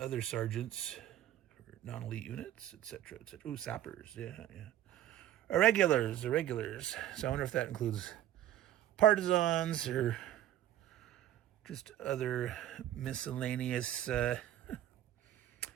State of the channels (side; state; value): left; quieter; 12.4 dB